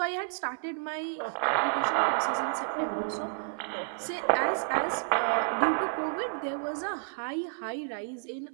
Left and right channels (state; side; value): silent; left; 57 dB below the other